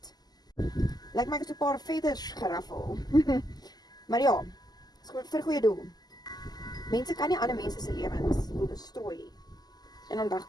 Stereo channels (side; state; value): right; late; 0.20 ms